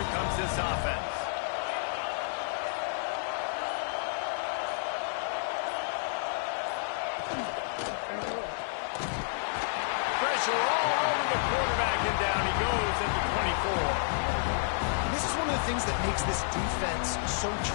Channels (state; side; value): silent; right; digital silence